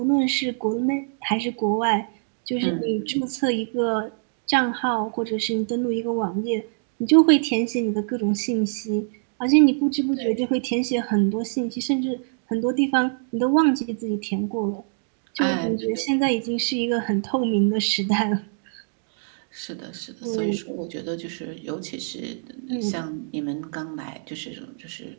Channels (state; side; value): silent; left; 62 dB below the other